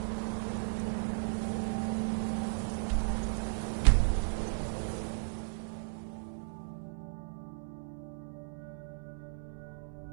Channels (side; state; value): left; silent; 54 dB below the other